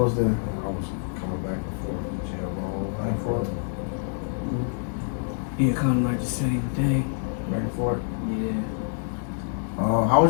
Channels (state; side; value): silent; right; digital silence